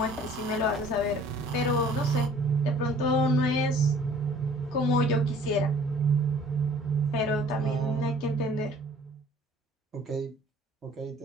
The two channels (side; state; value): both; normal; correlation 0.52